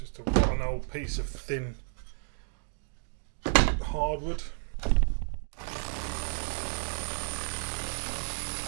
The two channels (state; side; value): silent; left; 57 dB below the other